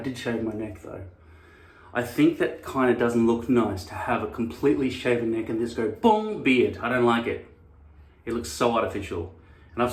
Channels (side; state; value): both; identical; correlation 1.00